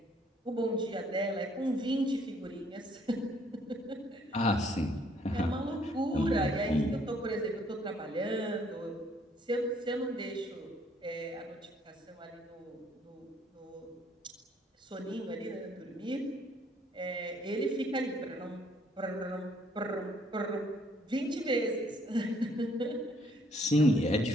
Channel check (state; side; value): normal; both; correlation 0.64